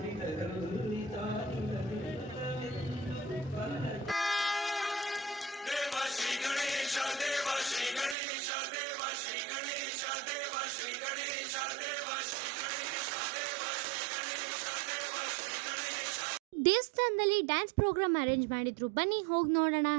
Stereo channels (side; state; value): left; drops out; at 8.2 s